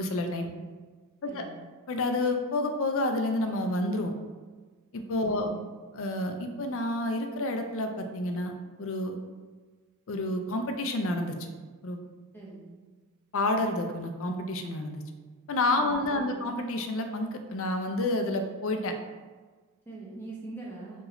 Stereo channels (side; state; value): both; normal; correlation 0.19